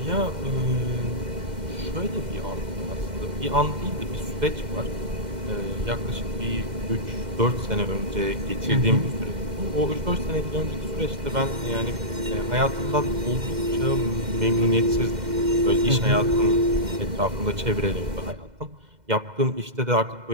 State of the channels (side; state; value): left; late; 2.1 ms